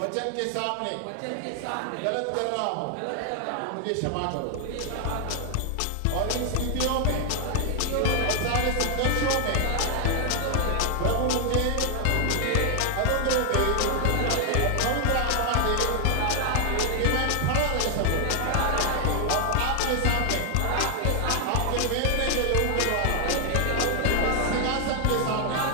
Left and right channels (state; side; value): different; both; correlation 0.00